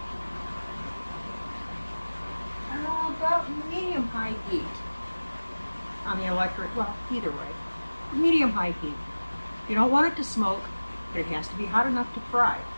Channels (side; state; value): both; inverted; correlation -1.00